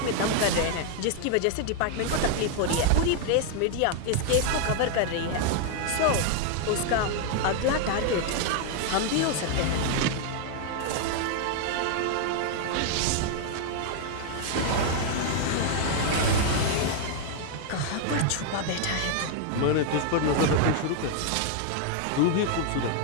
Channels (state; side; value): different; both; correlation 0.00